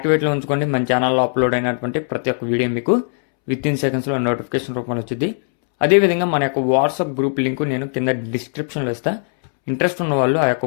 ఉంచుకోండి. మన ఛానల్లో అప్లోడ్ అయినటువంటి ప్రతి ఒక్క వీడియో మీకు విత్ ఇన్ సెకండ్స్లో నోటిఫికేషన్ రూపంలో వచ్చింది. అదేవిధంగా మన యొక్క వాట్సాప్ గ్రూప్ లింక్ నేను కింద డిస్క్రిప్షన్లో ఇస్తా. ఇంట్రెస్ట్ ఉన్న వాళ్ళు ఆ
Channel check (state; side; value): silent; right; 66 dB below the other